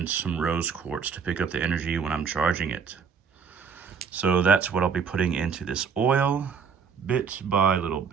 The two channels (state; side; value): quieter; left; 6.3 dB